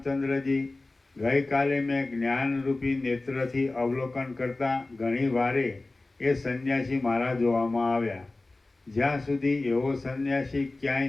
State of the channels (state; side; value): quieter; right; 3.1 dB